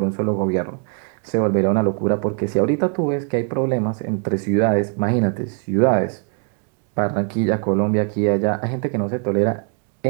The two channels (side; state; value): left; quieter; 39.4 dB